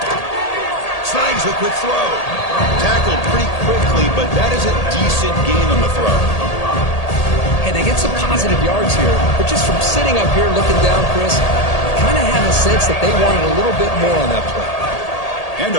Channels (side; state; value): right; late; 1.8 ms